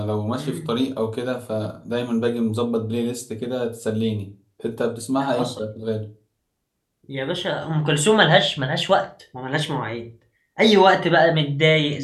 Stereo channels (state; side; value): identical; both; correlation 1.00